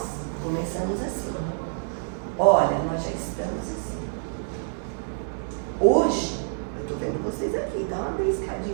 começamos assim. Olha, nós já estamos assim. Hoje, eu estou vendo vocês aqui, dá uma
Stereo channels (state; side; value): silent; left; 60 dB below the other